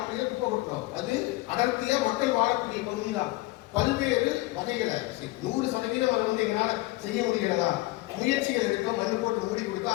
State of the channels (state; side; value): quieter; right; 20.2 dB